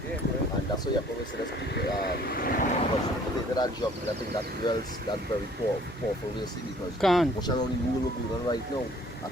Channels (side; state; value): both; normal; correlation 0.56